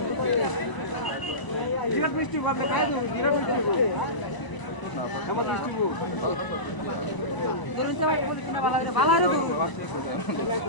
বিরাট মিষ্টি ভাবে খাই দেব বিরাট মিষ্টি আমার মিষ্টি গো এরতে ভাই পলিথিন ভালো রে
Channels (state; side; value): late; right; 1.0 ms